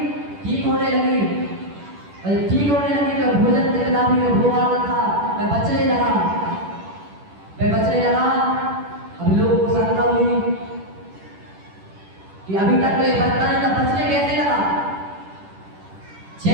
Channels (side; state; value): left; late; 10 ms